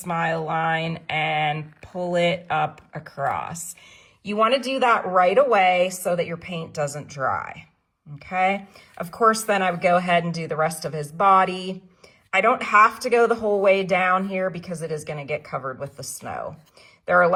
line and pull it up across. You want to do that right away so that your paint doesn't dry. Okay, of course, then I would go ahead and do the rest of his body. I don't have to go the whole way down here because it is going to get covered with the snow. There are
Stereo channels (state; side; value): identical; both; correlation 1.00